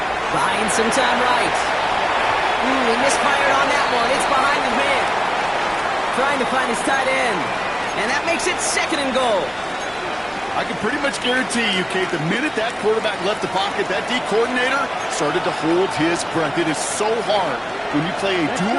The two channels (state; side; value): identical; both; correlation 1.00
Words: Buying some time right. He misfired on that one. It's behind the man. Trying to find his tight end. And that makes it second and goal. I can pretty much guarantee you, Kate, the minute that quarterback left the pocket, that D coordinator started to hold his breath. It is so hard when you play a